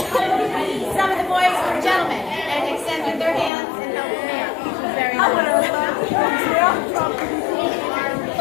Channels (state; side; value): drops out; right; at 3.5 s